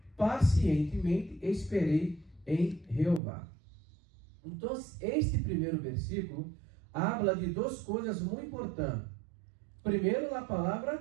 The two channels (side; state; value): left; drops out; at 3.2 s